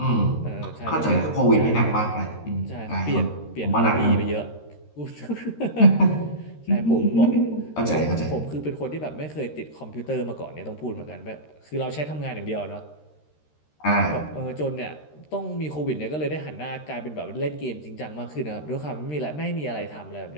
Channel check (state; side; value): late; right; 13 ms